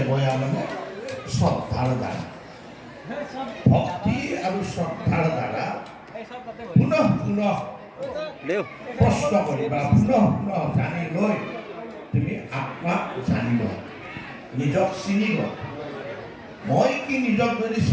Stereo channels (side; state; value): both; identical; correlation 1.00